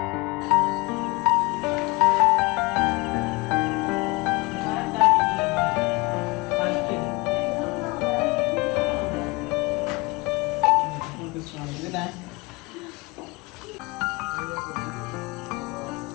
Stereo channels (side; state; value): right; quieter; 25.3 dB